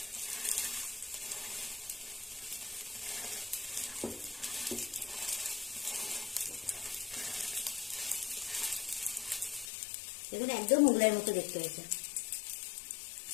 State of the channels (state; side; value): drops out; right; at 9.7 s